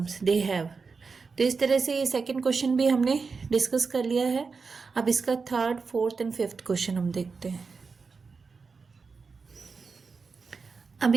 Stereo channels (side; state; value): left; quieter; 4.8 dB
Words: they have. तो इस तरह से ये सेकंड क्वेश्चन भी हमने डिस्कस कर लिया है। अब इसका third, fourth and fifth question हम देखते हैं। अब